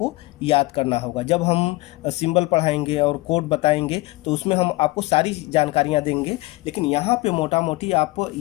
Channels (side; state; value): right; quieter; 21.9 dB